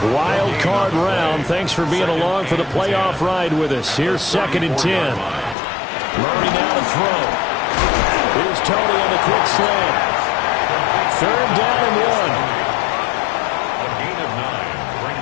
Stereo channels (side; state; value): right; drops out; at 5.6 s